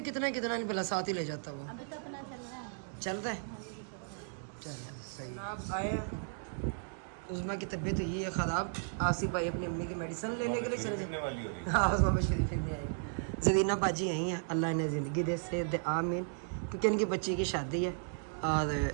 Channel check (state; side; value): silent; left; digital silence